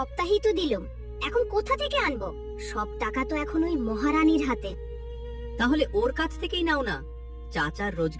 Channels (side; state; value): both; identical; correlation 1.00